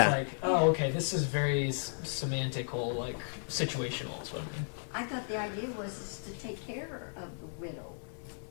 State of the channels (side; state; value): right; silent; digital silence